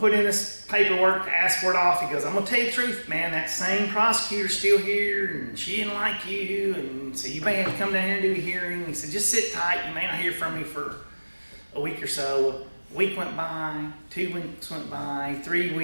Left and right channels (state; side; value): inverted; both; correlation -1.00